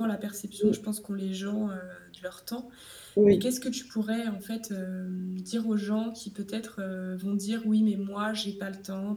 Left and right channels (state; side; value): identical; both; correlation 1.00